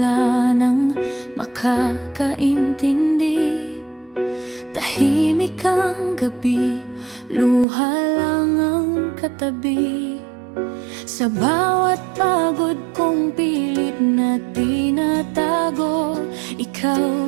nang makakaintindi, tahimik ang gabi, luha lang ang katabi. Sa bawat pagod kong pilit na tinatago,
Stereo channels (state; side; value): drops out; left; at 7.7 s